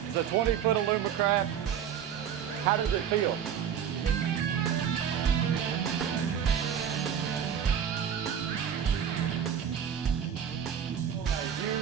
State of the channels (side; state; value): left; quieter; 8.6 dB